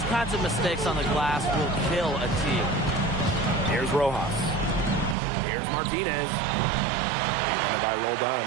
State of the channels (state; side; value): drops out; left; at 5.2 s